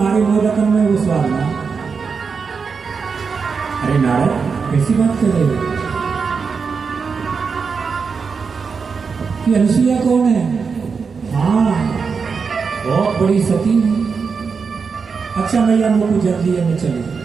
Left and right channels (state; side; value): quieter; left; 5.4 dB